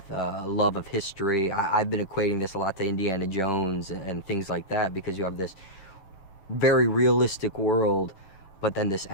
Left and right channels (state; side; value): late; right; 11 ms